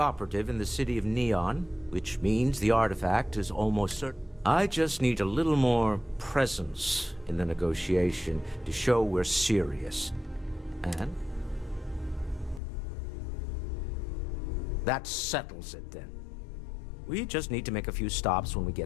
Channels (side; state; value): right; drops out; at 12.6 s